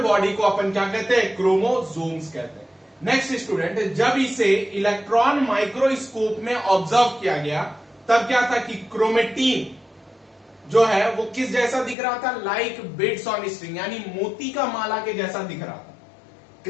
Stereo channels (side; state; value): right; drops out; at 12.0 s